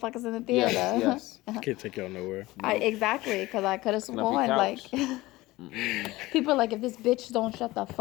in the theater. Yes. Can't take y'all nowhere. Exactly, because I could have sworn, like, couch. people are like, if this bitch don't shut the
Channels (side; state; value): right; quieter; 19.1 dB